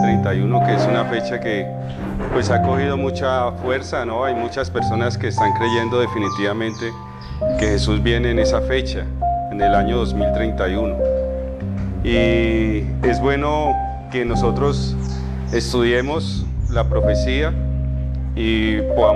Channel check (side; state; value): both; identical; correlation 1.00